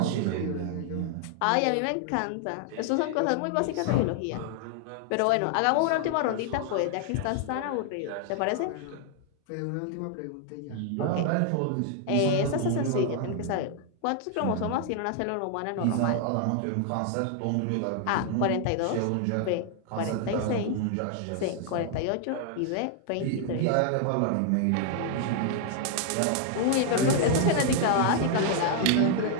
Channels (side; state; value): both; different; correlation 0.00